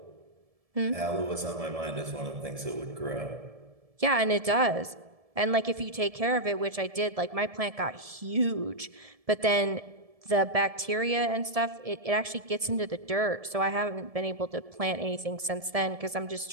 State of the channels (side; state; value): left; late; 1.7 ms